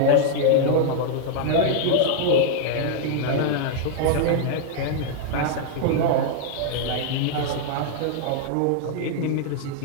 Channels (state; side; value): different; both; correlation -0.01